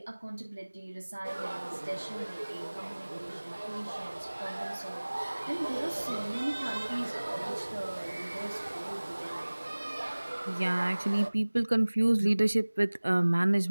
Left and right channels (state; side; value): inverted; both; correlation -1.00